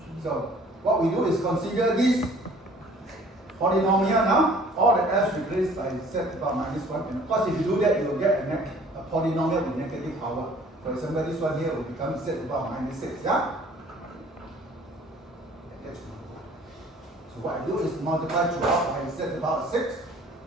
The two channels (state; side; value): normal; both; correlation 0.53